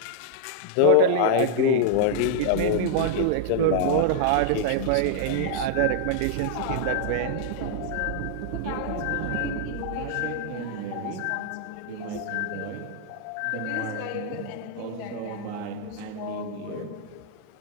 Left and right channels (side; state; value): both; different; correlation -0.01